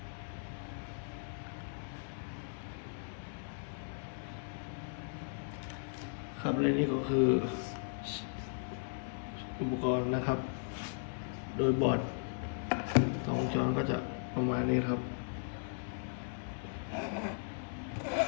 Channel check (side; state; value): right; silent; digital silence